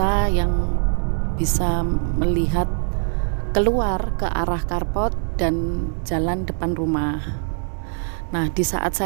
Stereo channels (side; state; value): left; silent; digital silence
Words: yang bisa melihat keluar ke arah carport dan jalan depan rumah. Nah, di saat